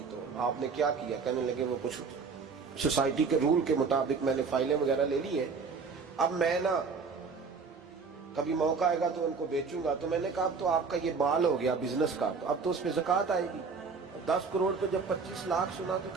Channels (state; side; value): quieter; left; 5.1 dB